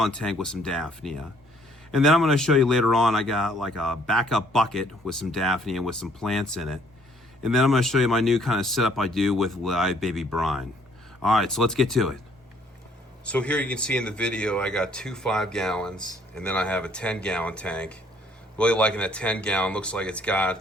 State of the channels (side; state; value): both; normal; correlation 0.63